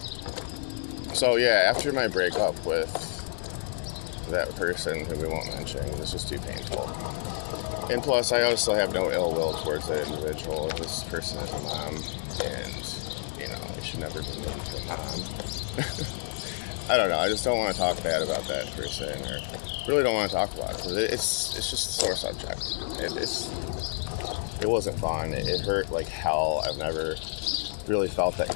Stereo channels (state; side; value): silent; right; 59 dB below the other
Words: So yeah, after my breakup with that person who we won't mention, it was just too painful. And plus, I also have no ill will towards that individual. This person is a mom, and you know, we should never be named for mom. I don't know. I just don't want to talk bad about that person, or really don't want to talk about it, because it's just a sore subject. It wasn't fun. It hurt like hell. I've never really felt that